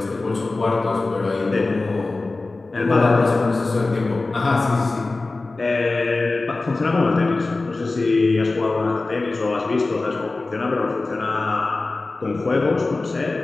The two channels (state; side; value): quieter; right; 3.4 dB